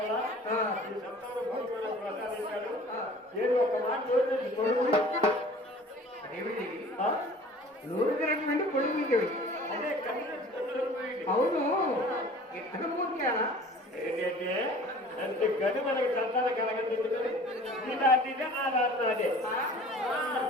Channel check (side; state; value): both; normal; correlation 0.46